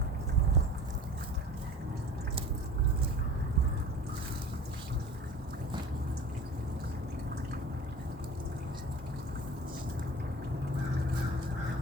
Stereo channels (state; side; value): normal; both; correlation 0.41